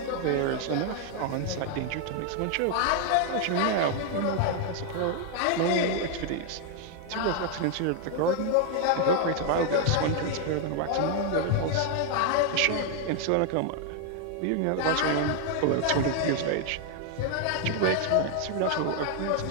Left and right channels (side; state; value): both; different; correlation 0.00